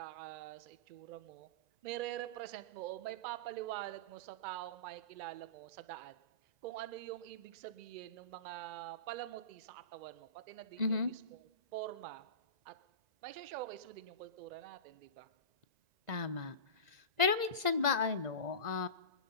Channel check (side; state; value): left; late; 1.9 ms